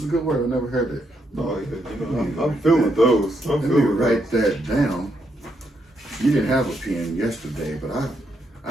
a good word. I never heard that. No, you know, I'm feeling those. Let me write that down. You didn't have a pen yesterday, but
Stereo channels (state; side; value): normal; both; correlation 0.78